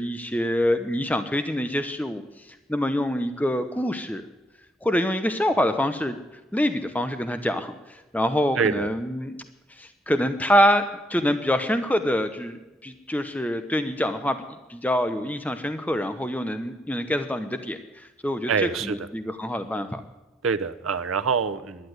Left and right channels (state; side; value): normal; both; correlation 0.73